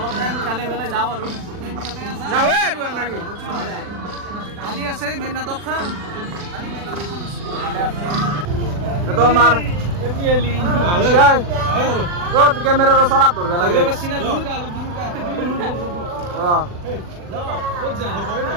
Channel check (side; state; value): left; late; 40 ms